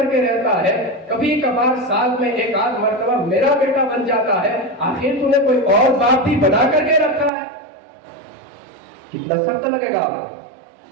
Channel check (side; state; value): left; drops out; at 7.3 s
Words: کے رہتا ہے؟ کبھی کبھار سال میں ایک آدھ مرتبہ میرا بیٹا بن جاتا ہے، آخر تو نے کوئی اور باپ بھی بنا کر کے رکھا ہے؟ کتنا سخت لگے گا آپ کو۔